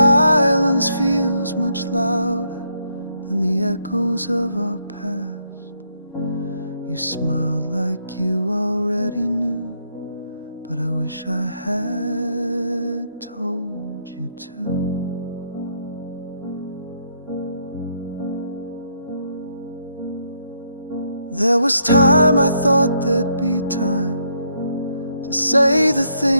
feels much louder than the echoes of our past. You smiled like you already knew, but I wish I had told you to. There was time I thought there'd be time to say the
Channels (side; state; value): both; inverted; correlation -0.74